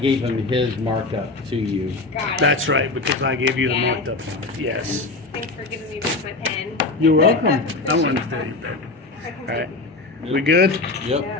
him his markup to you. Got it. That's right, because I gave you the Yeah. marked up one. Yes. Thanks for giving me back my pen. You're welcome. I wanted to tell you that. All right. We good? Yep.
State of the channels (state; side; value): quieter; right; 3.4 dB